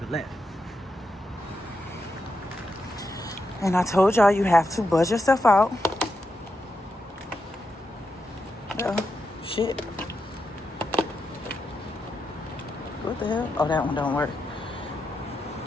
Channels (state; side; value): normal; both; correlation 0.86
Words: left. And I told y'all you have to buzz yourself out. Oh, shit. What the hell? Oh, that one don't work.